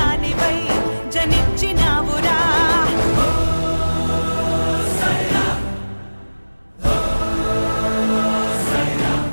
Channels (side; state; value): both; inverted; correlation -1.00